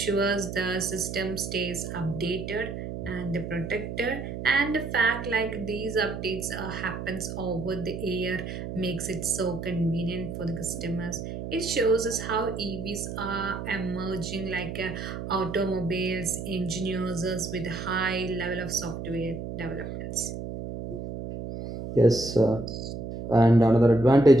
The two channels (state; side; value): noise; right; hum, 7 dB below the sound